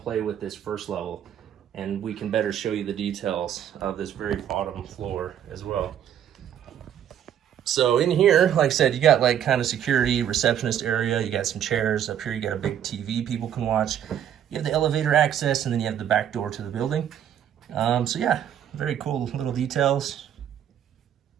play with this first level. And we can better show you the details of this very bottom floor as well. So in here, like I said, you got like kind of security, receptionist area. You got some chairs. Up here you got a big TV people can watch. You have the elevator access, and then you have the back door to the building. So yeah, very cool little details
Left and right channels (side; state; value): left; quieter; 9.8 dB